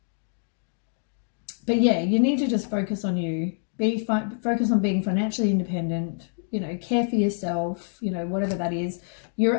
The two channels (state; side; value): silent; right; digital silence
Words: yeah, you need to just focus on you. Focus on being financially independent. You know, care for yourself. You know, whatever that is. You